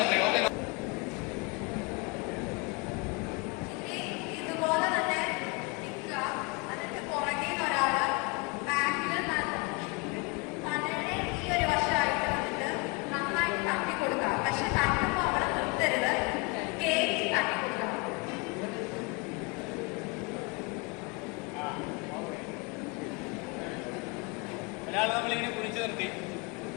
ഓക്കെ, ഇതുപോലെ തന്നെ നിൽക്കുക. എന്നിട്ട് പുറകെ ഒരാള് ബാക്കിൽ തലയുടെ ഈ ഒരു വശമായിട്ട് വന്നിട്ട് നന്നായിട്ട് തട്ടി കൊടുക്കുക. പക്ഷെ തട്ടുമ്പോൾ അവിടെ നിർത്തരുത്, കേക്ക് തട്ടി കൊടുക്കണം. ഒരാൾ നമ്മളിങ്ങനെ പിടിച്ചു നിർത്തി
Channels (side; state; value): right; quieter; 29.1 dB